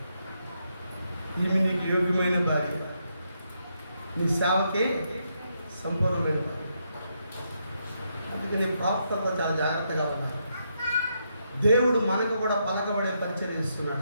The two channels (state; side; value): inverted; both; correlation -0.80